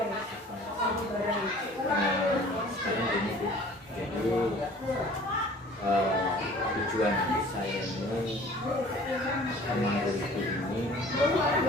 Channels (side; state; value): both; normal; correlation 0.49